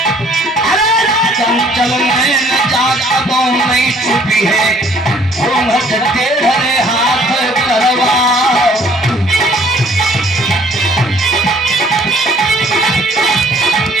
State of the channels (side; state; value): both; normal; correlation 0.58